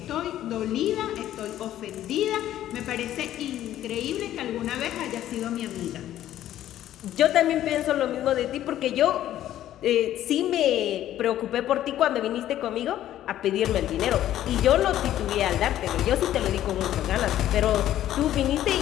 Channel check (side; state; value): right; quieter; 12.6 dB